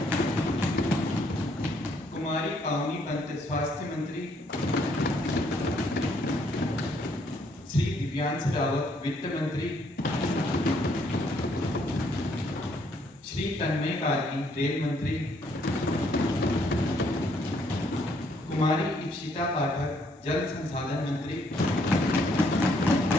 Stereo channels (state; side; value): normal; both; correlation 0.69